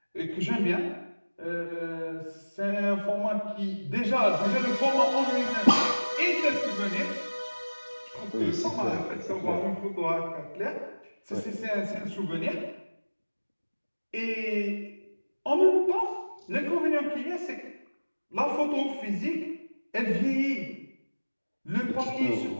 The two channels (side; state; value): both; inverted; correlation -1.00